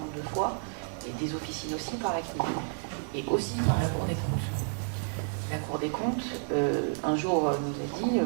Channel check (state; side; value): silent; left; 56 dB below the other